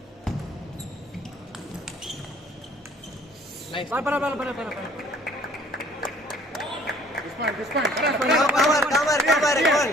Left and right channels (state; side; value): normal; both; correlation 0.55